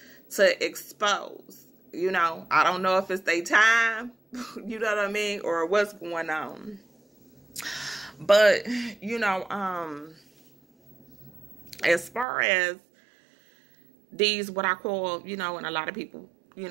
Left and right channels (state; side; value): drops out; left; at 12.2 s